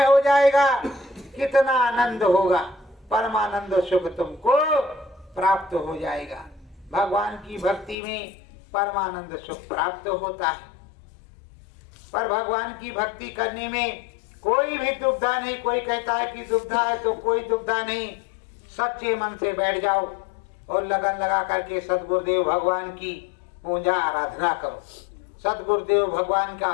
हो जाएगा। कितना आनंद होगा, परमानंद सुख तुमको प्राप्त हो जाएगा। भगवान की भक्ति में परमानंद सुख प्राप्त होता है। पर भगवान की भक्ति करने में कोई भी दुविधा नहीं। कोई कहता है कि दुविधा है, तो कोई दुविधा नहीं। सच्चे मन से बैठ जाओ और लगन लगा करके सदगुरुदेव भगवान की पूजा आराधना करो, सदगुरुदेव भगवान का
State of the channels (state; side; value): drops out; right; at 8.0 s